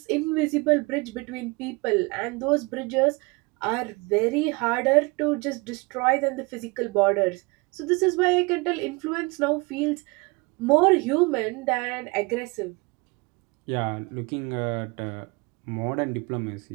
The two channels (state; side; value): quieter; left; 27.0 dB